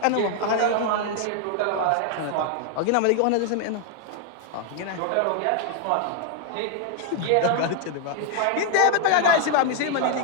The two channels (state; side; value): different; both; correlation 0.00